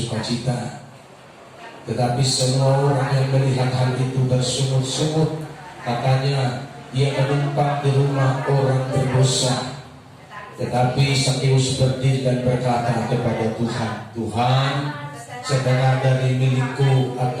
Tetapi semua orang yang melihat hal itu bersungut-sungut, katanya, "Ia menumpang di rumah orang berdosa." Tetapi Sakeus berdiri dan berkata kepada Tuhan, "Tuhan, setengah dari milikku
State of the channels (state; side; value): identical; both; correlation 1.00